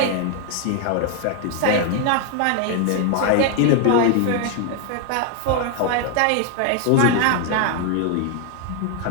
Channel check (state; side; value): different; both; correlation 0.01